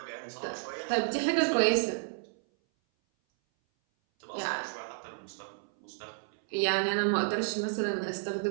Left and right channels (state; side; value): silent; left; 57 dB below the other